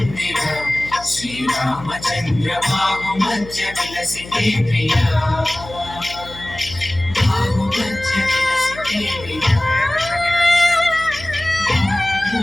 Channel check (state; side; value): noise; left; hum, 15 dB below the sound